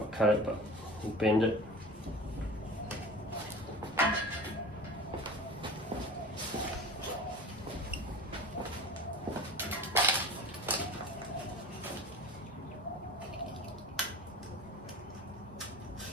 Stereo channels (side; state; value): both; normal; correlation 0.36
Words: cut it, but we'll bend it.